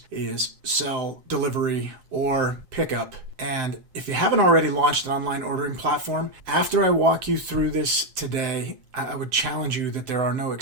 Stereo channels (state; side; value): late; left; 7.7 ms